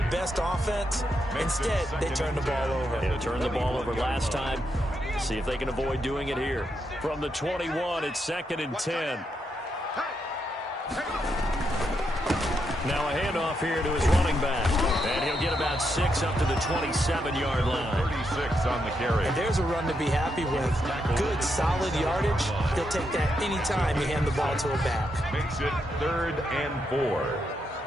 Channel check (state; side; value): normal; both; correlation 0.81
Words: best offense. Instead, they turn the ball over. They turned the ball over last time. See if they can avoid doing it here. From the 21, it's 2nd and 10. Now a handoff here to his running back. And he'll get about 6 up to the 27-yard line. 36 on the carry. And there's a run to be happy with. Good, solid yardage. They'll take that any time you hand the ball to a back. Makes it 3rd and 4.